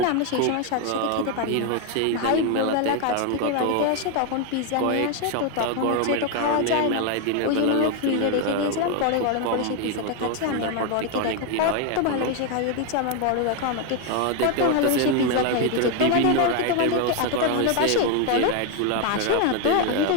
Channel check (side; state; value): both; different; correlation 0.01